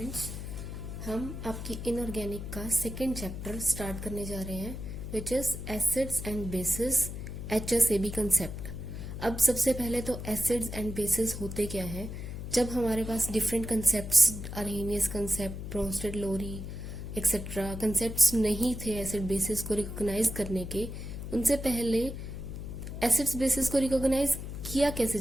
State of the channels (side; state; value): left; noise; hum, 7 dB below the sound